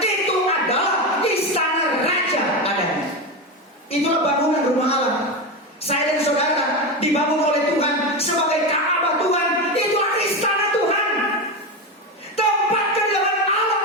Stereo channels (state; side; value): normal; both; correlation 0.17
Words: itu adalah istana raja adanya. Itulah bangunan rumah Allah. Saya dan saudara dibangun oleh Tuhan sebagai Ka'bah Tuhan. Itulah istana Tuhan. Tempat kediaman Allah